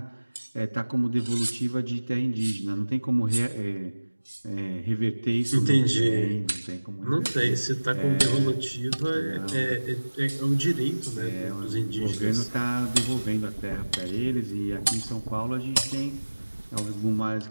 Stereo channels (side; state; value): both; inverted; correlation -1.00